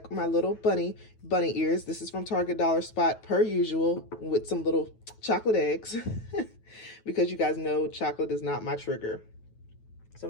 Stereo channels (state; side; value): late; right; 9.2 ms